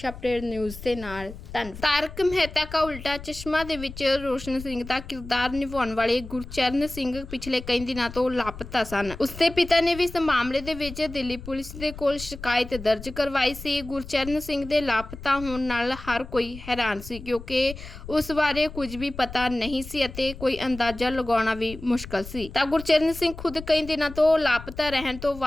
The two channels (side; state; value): left; noise; rumble, 13 dB below the sound